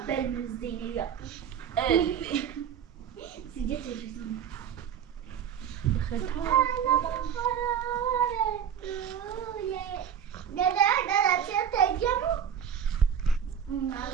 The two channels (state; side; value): quieter; left; 8.5 dB